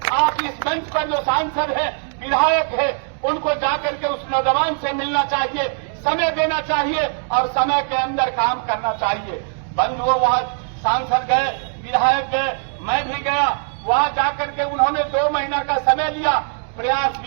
आप इस मंच पर जो सांसद है, विधायक है, उनको जाकर के उस नौजवान से मिलना चाहिए, समय देना चाहिए और समय के अंदर काम करना चाहिए। बंधुओं, वहाँ सांसद गए, विधायक गए, मैं भी गया, वहाँ जाकर के उन्होंने 2 महीना का समय लिया, प्रयास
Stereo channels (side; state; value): left; silent; 65 dB below the other